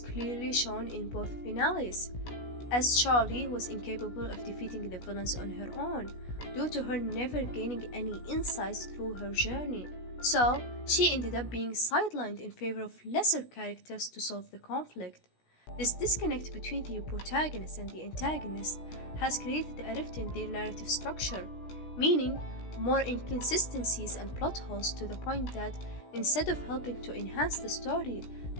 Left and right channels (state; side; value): late; right; 16 ms